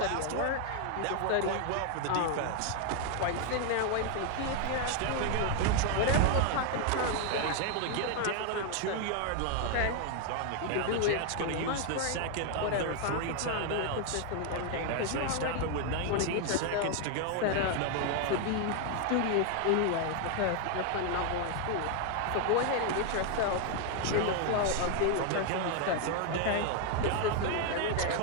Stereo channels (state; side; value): different; both; correlation 0.00